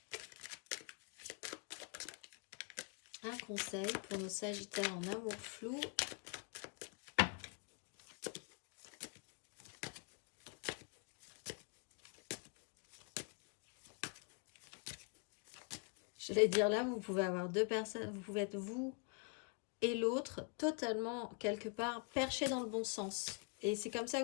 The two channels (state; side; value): quieter; right; 36.6 dB